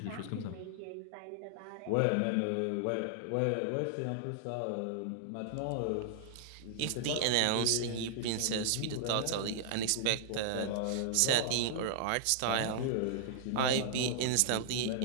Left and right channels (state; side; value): different; both; correlation -0.01